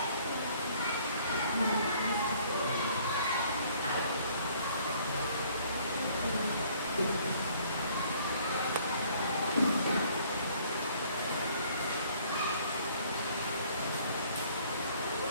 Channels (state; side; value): inverted; both; correlation -0.60